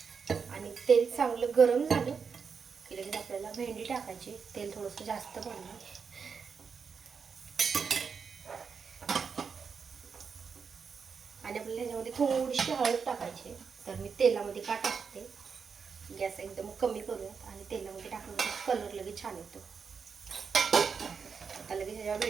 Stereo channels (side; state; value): left; quieter; 5.9 dB